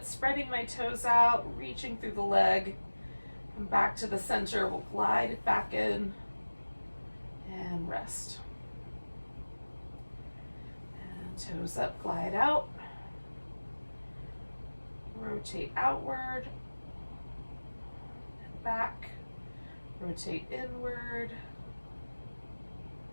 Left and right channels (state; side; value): inverted; both; correlation -1.00